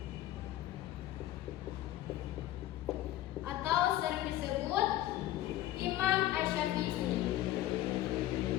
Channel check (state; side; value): quieter; right; 14.3 dB